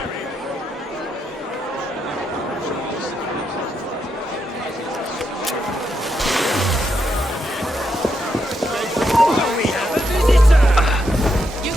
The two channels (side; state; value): both; normal; correlation 0.81